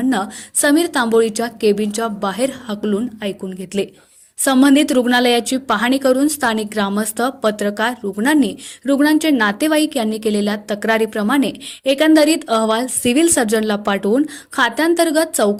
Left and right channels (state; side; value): identical; both; correlation 1.00